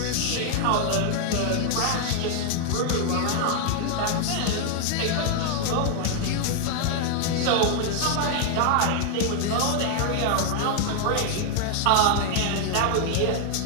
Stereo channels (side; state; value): both; different; correlation 0.00